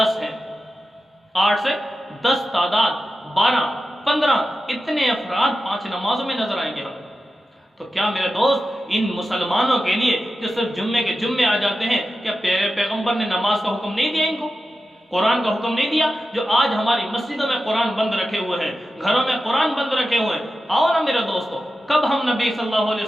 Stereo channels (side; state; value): both; normal; correlation 0.91